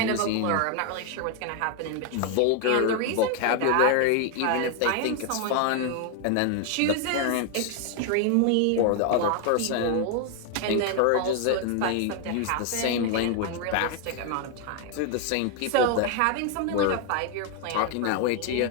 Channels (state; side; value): different; both; correlation 0.00